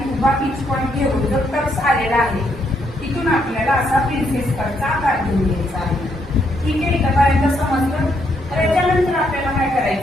उभा पिच पॉईंट घेऊन जो टक्स आलेला आहे तिथून आपल्याला असा प्रिन्सेस कटचा आकार देऊन घ्यायचा आहे. ठीक आहे, इथपर्यंत समजलं. तर याच्यानंतर आपल्याला काय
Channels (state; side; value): normal; both; correlation 0.75